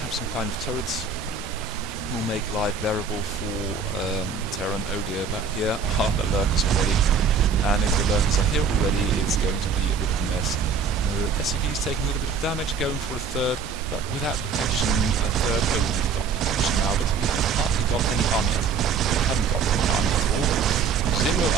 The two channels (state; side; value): quieter; left; 5.5 dB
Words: some kind of turrets will make life bearable for Terran. Oh dear, but here are the Lurkers already, and if the Lurkers are here already, it's going to be a bit of a mess. SCV is taking a little bit of damage, going for a 3rd, but without detection, a 3rd. Oh, we've got detection now, but we have hardly got any army at all. We haven't got any army at all. 0